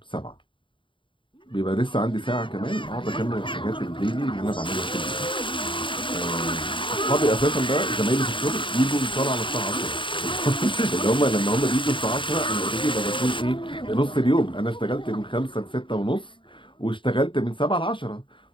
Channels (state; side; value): late; right; 0.24 ms